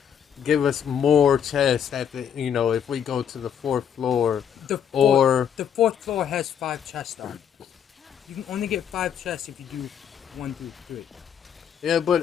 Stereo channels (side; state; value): right; quieter; 8.5 dB